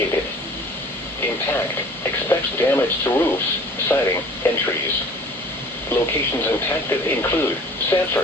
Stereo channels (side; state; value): both; normal; correlation 0.47